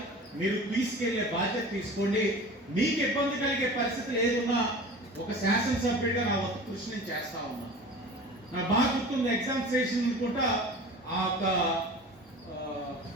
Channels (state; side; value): normal; both; correlation 0.38